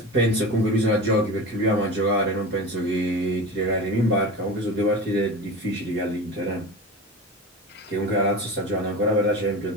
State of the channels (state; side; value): normal; both; correlation 0.29